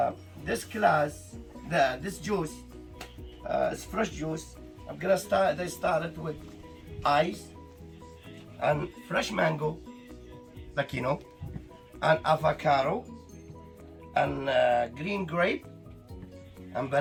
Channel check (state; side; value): identical; both; correlation 1.00